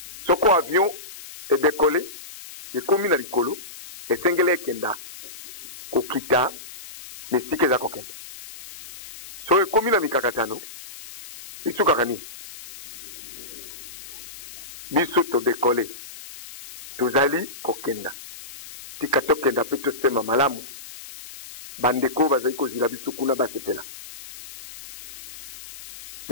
soko avion edekole ekomi na likolo esengeli ekenda kokita esika eza kokenda so ekomi na mikakatano esukaka nini biso todekole tozali kokenda tika tokenda mpe tosema malamu bandeko bazali kozila biso kuna basepela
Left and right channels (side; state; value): left; noise; hiss, 15 dB below the sound